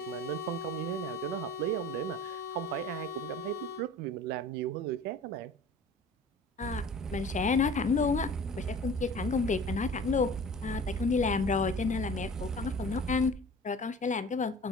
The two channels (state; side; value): normal; both; correlation 0.43